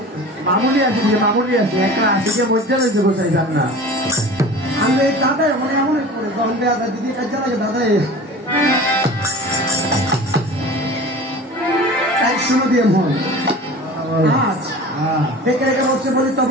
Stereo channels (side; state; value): both; normal; correlation 0.38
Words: মামুলি আছে একটা আসিকে মধ্যে রয়েছে বসাই যান না আমি দাদা মানে এমন করে যখন দেওয়া যায় দিদি কাজে লাগে দাদা তাই শুনো দিয়ে মন আজ দেখে রেখে বলছে বলি